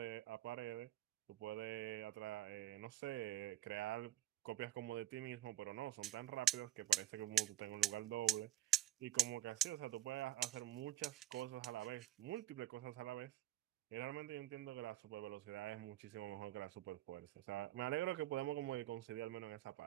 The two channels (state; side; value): quieter; left; 13.7 dB